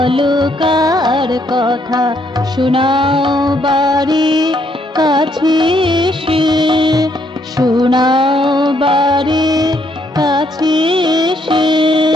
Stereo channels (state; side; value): normal; both; correlation 0.71